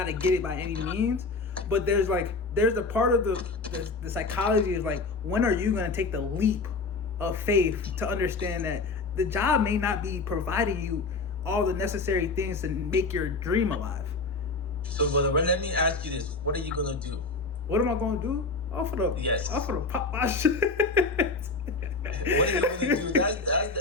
to get it by any means, but there's a part of the psychology is like, when are you going to take the leap of faith to understand that the job may not be providing you all the necessary things to make your dream alive. So, brother, let me ask you this: what are you gonna do? What am I gonna do? I'm gonna pop my shit. What are you gonna do?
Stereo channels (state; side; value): quieter; right; 3.8 dB